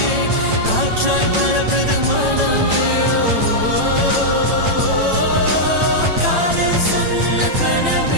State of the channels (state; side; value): late; left; 9.0 ms